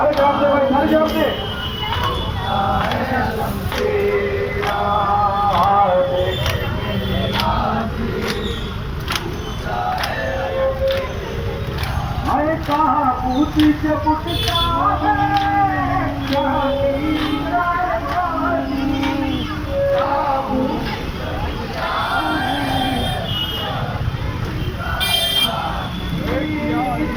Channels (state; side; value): identical; both; correlation 1.00